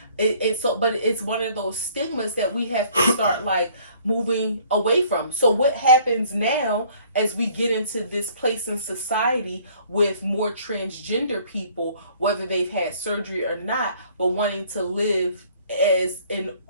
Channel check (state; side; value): inverted; both; correlation -0.58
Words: But it's one of those stigmas that we have to start like moving away from. So what happens now as we get into this place in society with more transgender people, whether they've had surgery or not, but wanting to live as an